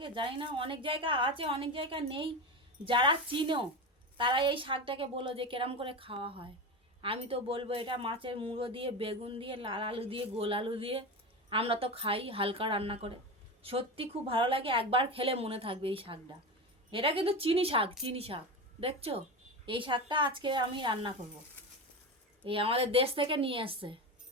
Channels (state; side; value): normal; both; correlation 0.22